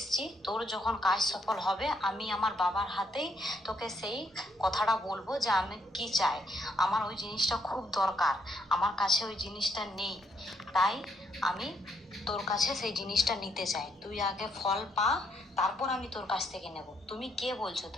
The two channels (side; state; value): both; normal; correlation 0.74